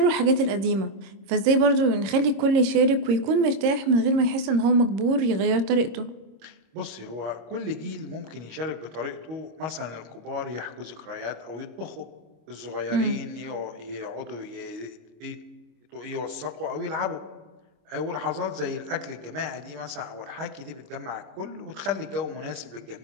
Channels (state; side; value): late; left; 26 ms